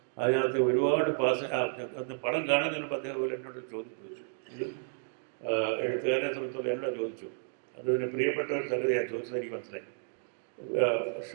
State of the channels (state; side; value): silent; left; digital silence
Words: അതിനകത്ത് ഒരുപാട് അന്ന് പടം കാണുന്നതിന് മുമ്പ് അദ്ദേഹം പോലെ എന്നോട് ചോദിച്ചു, ഇത് എഴുത്തുകാരനെ സംബന്ധിച്ചോളം എന്നോട് ചോദിച്ചു. അതിന് പ്രിയപ്പെട്ട ഒരു സംഗതിയാണ് ചോദിച്ചത്, എനിക്ക് മനസ്സിലായി.